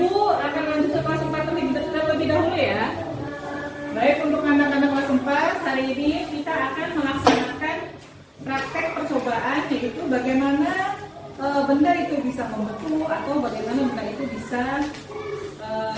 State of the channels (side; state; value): both; identical; correlation 1.00